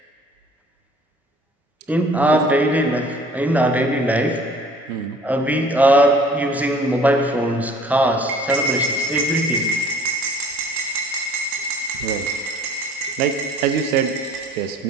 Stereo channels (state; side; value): normal; both; correlation 0.52